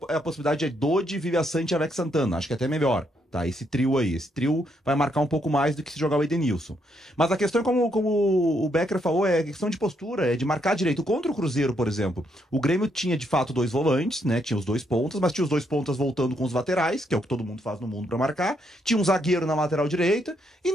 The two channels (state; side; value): normal; both; correlation 0.75